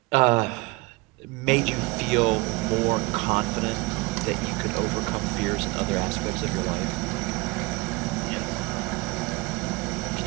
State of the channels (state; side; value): quieter; left; 24.7 dB